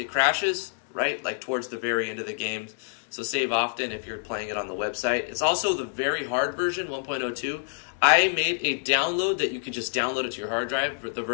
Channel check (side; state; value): right; silent; 60 dB below the other